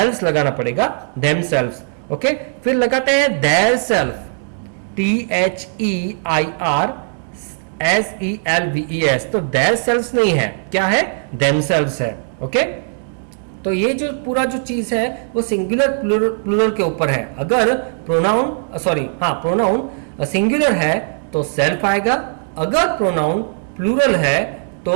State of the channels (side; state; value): left; silent; 67 dB below the other